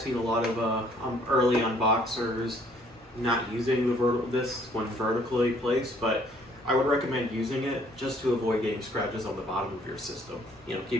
seen a lot of early unboxers not using this when vertically placed, but I would recommend using it just to avoid getting scratches on the bottom of your system.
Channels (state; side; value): normal; both; correlation 0.62